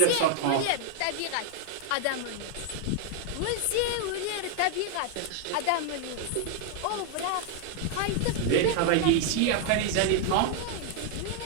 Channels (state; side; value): different; both; correlation 0.00